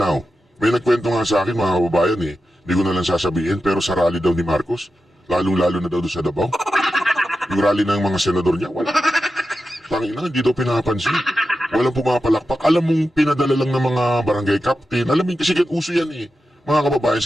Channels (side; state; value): both; normal; correlation 0.91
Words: May nagkwento nga sa akin, mga kababayan hindi ko na lang sasabihin, pero sa rally daw ni Marcos, lalong-lalo na daw doon sa Davao. Yung rally ng mga senador niya, wala. Tangina, hindi daw pinapansin. Walang pumapalakpak. Alam mong pinadala lang ng mga barangay captain. Alam mo, kasi uso yan mga kababayan,